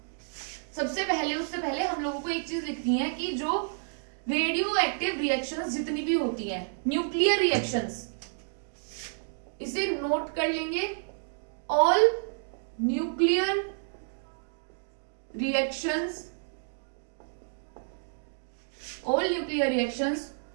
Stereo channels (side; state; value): left; silent; digital silence